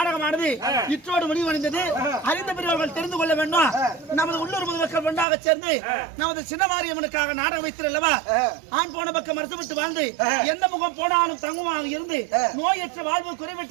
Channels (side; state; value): left; drops out; at 5.2 s